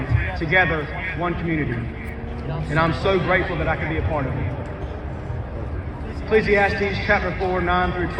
together, one community. And I'm so grateful that I could be a part of it. Ecclesiastes chapter 4, 9 through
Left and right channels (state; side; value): identical; both; correlation 1.00